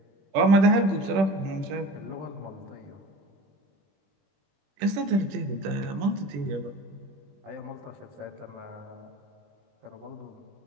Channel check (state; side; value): late; left; 21 ms